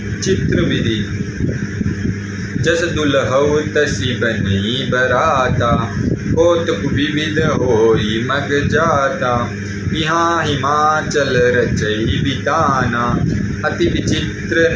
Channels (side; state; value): both; identical; correlation 1.00